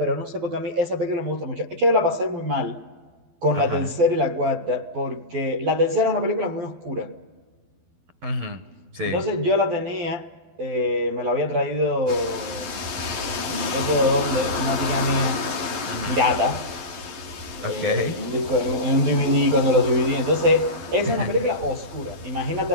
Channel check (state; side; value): late; left; 12 ms